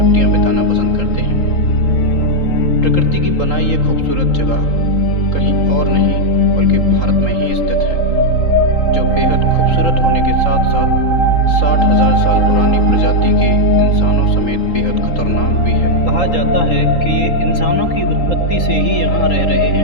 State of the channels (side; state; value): right; late; 3.8 ms